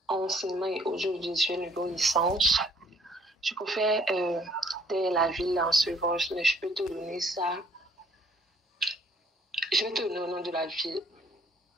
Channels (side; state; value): both; normal; correlation 0.62